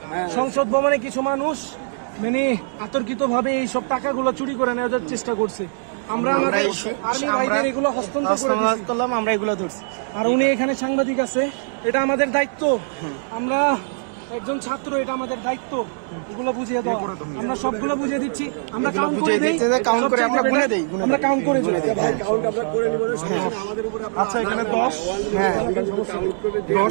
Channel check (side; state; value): left; silent; digital silence